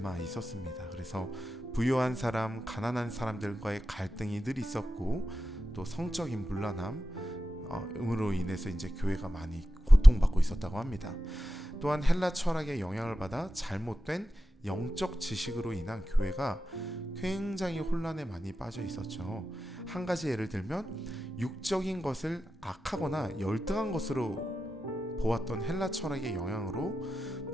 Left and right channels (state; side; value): normal; both; correlation 0.91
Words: 있었습니다. 그래서 부유한 사람, 가난한 사람들과의 갈등이 늘 있었고, 또 성적인 문란함으로 인해서 이제 교회가 많이 고통받고 있었다고 합니다. 또한 헬라 철학의 영향을 받아 잘못된 영적 지식으로 인한 교회가 굉장히 혼란에 많이 빠져 있었죠. 한 가지 예를 들면 육적인 것을 악하거나 열등한 것으로 보았던 헬라 철학의 영향으로